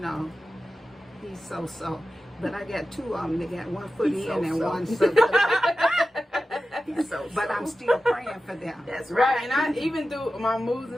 he's so. But I got two of them. They got one foot in and one so. But I'm still praying for them. That's right. And I even through my moves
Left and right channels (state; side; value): normal; both; correlation 0.93